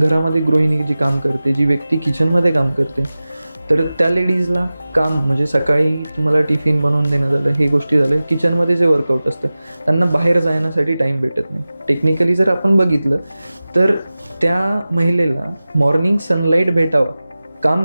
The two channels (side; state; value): both; inverted; correlation -0.97